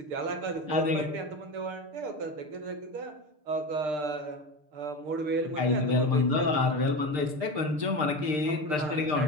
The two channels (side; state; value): left; late; 6.7 ms